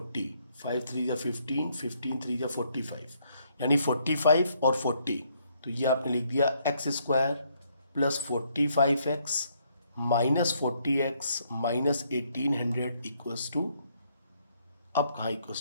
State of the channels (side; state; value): both; inverted; correlation -0.71